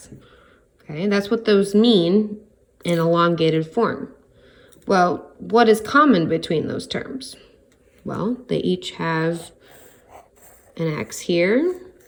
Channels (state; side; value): identical; both; correlation 1.00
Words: Okay, that's what those mean in elongated form. Well, what is common between those terms? Well, they each have an x here,